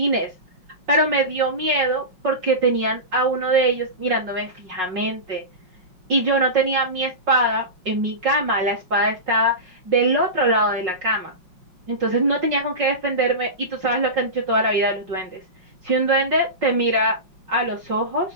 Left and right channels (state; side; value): late; left; 5.5 ms